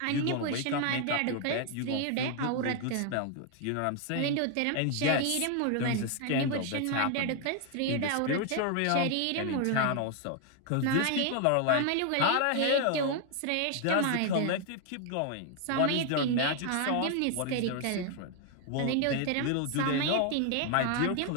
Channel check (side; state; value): both; different; correlation 0.00